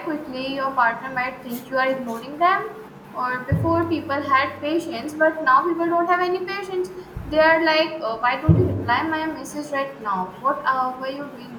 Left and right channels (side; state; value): both; identical; correlation 1.00